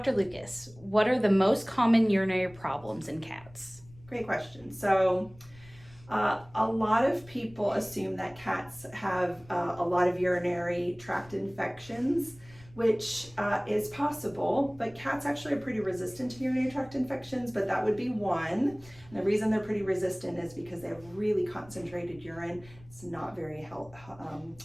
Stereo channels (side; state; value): left; noise; rumble, 24 dB below the sound